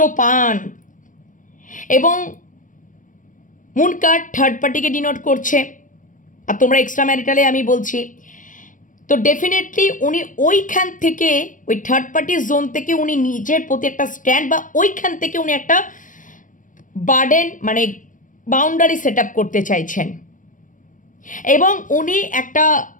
পান। এবং মুন কার্ড থার্ড পার্টিকে ডিনোট করছে, আর তোমরা এক্সট্রা ম্যারিটালে আমি বলছি। তো ডেফিনেটলি উনি ওইখান থেকে, ওই থার্ড পার্টির জোন থেকে উনি নিজের প্রতি একটা স্ট্যান্ড, বা ওইখান থেকে উনি একটা বার্ডেন মানে বাউন্ডারি সেট আপ করতে চাইছেন। এবং উনি একটা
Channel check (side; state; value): right; late; 0.38 ms